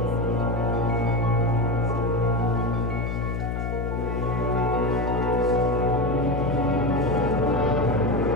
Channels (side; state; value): left; noise; hum, 2 dB below the sound